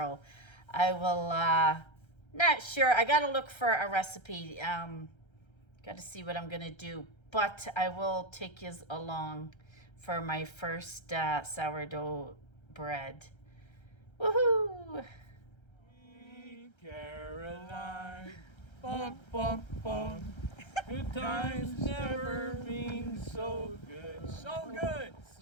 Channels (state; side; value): late; right; 1.3 ms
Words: I will, not sure. I got to look for a recipe. Got to see what I'm going to do. But I will take you along for my first sourdough bread. Woohoo! Caroline, bum, bum, bum. Good times never been so good. So good,